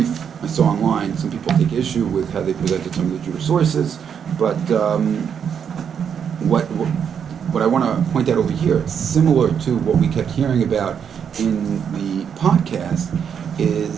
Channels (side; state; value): left; quieter; 7.6 dB